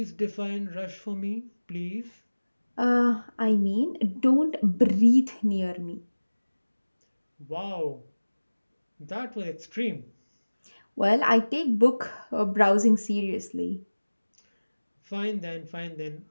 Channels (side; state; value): both; inverted; correlation -1.00